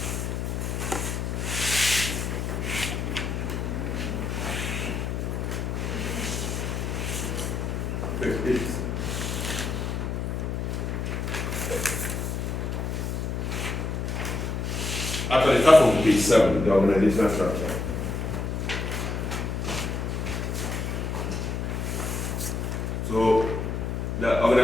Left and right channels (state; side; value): noise; left; hum, 2 dB below the sound